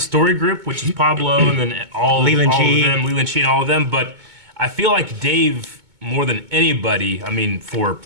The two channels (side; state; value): left; late; 2.2 ms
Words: story group, which is Pablo, and then Leland all Chee. of them, Leland Chee and all of them. But I feel like Dave, more than anybody, I mean, for